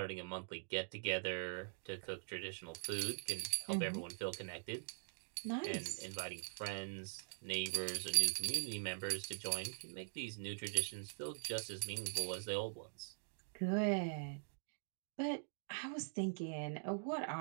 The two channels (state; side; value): silent; left; digital silence